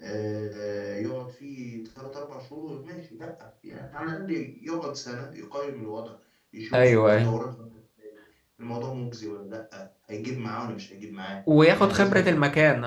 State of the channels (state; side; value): identical; both; correlation 1.00